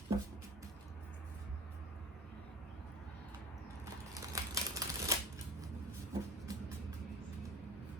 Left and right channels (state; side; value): normal; both; correlation 0.40